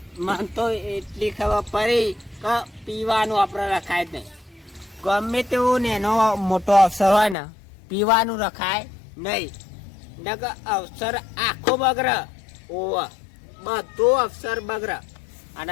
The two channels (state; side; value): drops out; right; at 7.4 s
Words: મન તો એટલી ખબર પડી કે પીવાનું આપણે રખાય જ નહીં ગમે તેવું ને એનો મોટો અવસર હોય ને પીવાનું રખાય નહીં નકર અવસર આખો બગર ઓવ બધો અવસર બગર